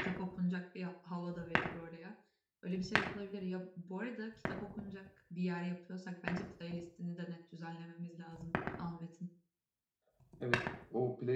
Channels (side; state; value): both; identical; correlation 1.00